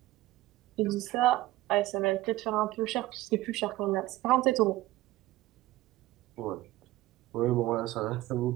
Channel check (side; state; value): left; quieter; 17.2 dB